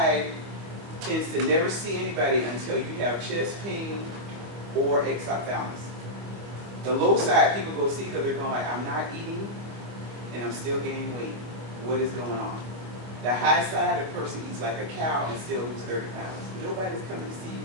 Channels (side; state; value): left; late; 25 ms